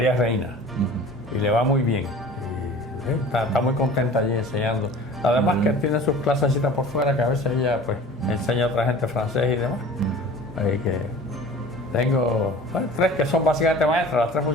Reina, y le va muy bien. Está muy contenta allí enseñando. Además que tiene sus clasecitas por fuera, que a veces ella pues enseña a otra gente francés y demás. Así que tengo tres que son básicamente maestras, las tres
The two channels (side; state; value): both; normal; correlation 0.42